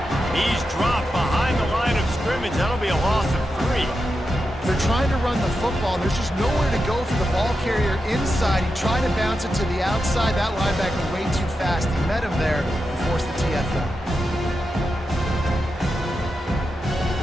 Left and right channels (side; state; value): both; normal; correlation 0.89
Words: He's dropped behind the line of scrimmage. That'll be a loss of 3. They're trying to run the football, and there's just nowhere to go for the ball carrier inside. He tried to bounce it to the outside. That linebacker way too fast. He met him there and forced the TFL.